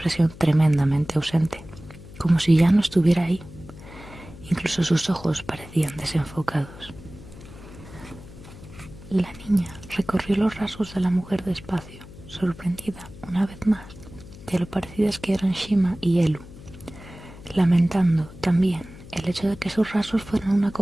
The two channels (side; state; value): left; noise; hum, 17 dB below the sound